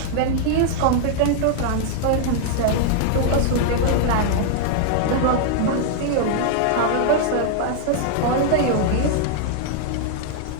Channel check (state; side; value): different; both; correlation 0.00